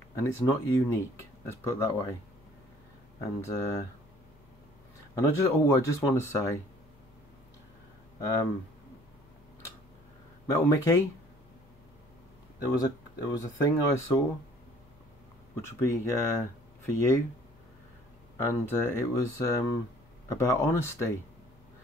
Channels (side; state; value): both; normal; correlation 0.55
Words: it's not unique. Let's put it that way. And I just want to say, Metal Mickey. There was a thing I saw, which would be for you, and it was about honesty.